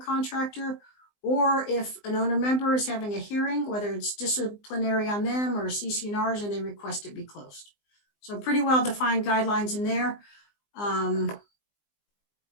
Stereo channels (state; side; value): late; right; 19 ms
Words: or if an owner member is having a hearing, whether it's disciplinary on them or CC&Rs, and they request it be closed. So pretty well defined guidelines in there. And